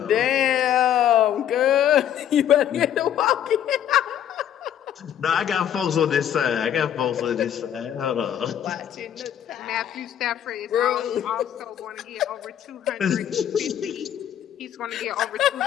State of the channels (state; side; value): quieter; right; 10.1 dB